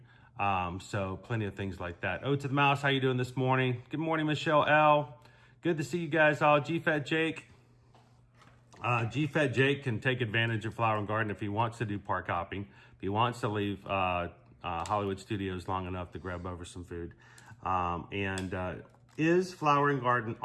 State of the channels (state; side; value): identical; both; correlation 1.00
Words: So plenty of things like that. Oh, to the mouse, how you doing this morning? Good morning, Michelle L. Good to see you guys all. GFat Jake. GFat Jake can take advantage of Flower and Garden if he wants to do park hopping. If he wants to leave Hollywood Studios long enough to grab over some food. Is Flower and Garden